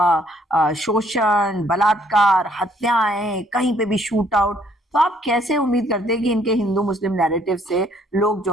शोषण, बलात्कार, हत्याएं, कहीं पे भी शूट आउट। तो आप कैसे उम्मीद करते हैं कि इनके हिंदू मुस्लिम नैरेटिव से लोग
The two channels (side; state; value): both; normal; correlation 0.65